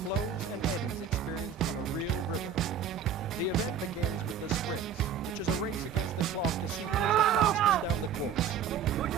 and eddies experienced on a real river. The event begins with the sprints, which is a race against the clock to see who's the fastest down the course.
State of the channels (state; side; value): quieter; left; 7.3 dB